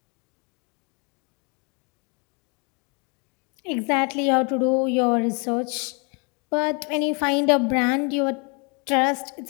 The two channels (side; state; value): right; quieter; 34.1 dB